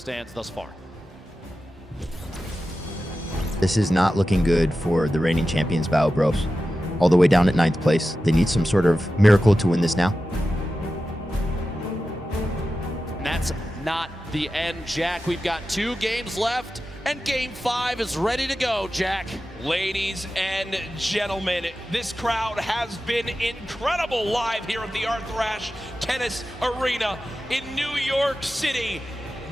thus far. This is not looking good for the reigning champions, Bao Bros. All the way down at 9th place. They need some sort of miracle to win this now. And that's not the end, Jack. We've got 2 games left, and game 5 is ready to go, Jack. Ladies and gentlemen, this crowd has been incredible live here at the Arthrash Tennis Arena in New York City.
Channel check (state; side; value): normal; both; correlation 0.93